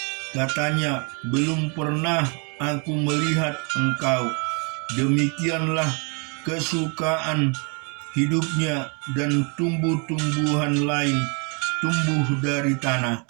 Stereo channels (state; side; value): quieter; left; 34.9 dB